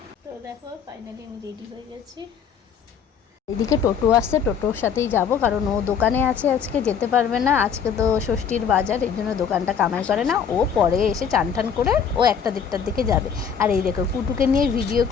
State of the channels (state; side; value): quieter; right; 7.2 dB